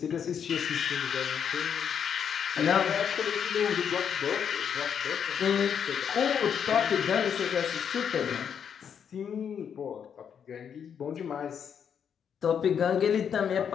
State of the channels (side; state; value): right; quieter; 7.8 dB